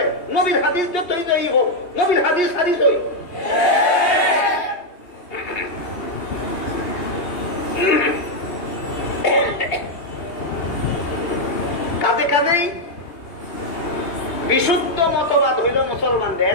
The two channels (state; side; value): late; right; 2.8 ms